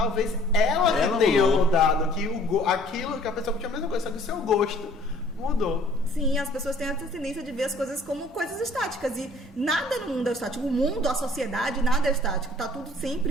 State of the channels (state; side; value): normal; both; correlation 0.56